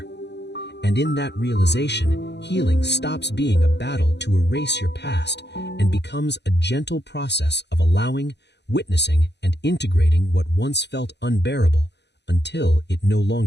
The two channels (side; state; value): right; late; 0.50 ms